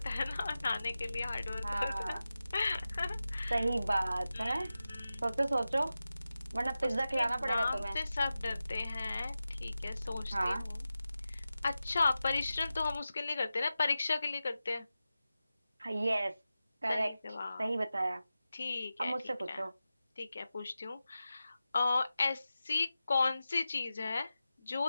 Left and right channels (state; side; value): inverted; both; correlation -0.94